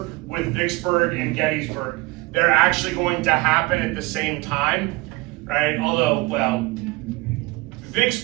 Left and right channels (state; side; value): quieter; left; 23.1 dB